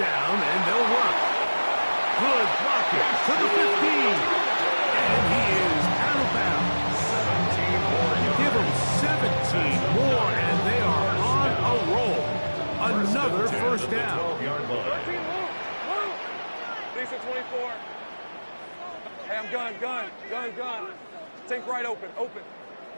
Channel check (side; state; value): both; inverted; correlation -1.00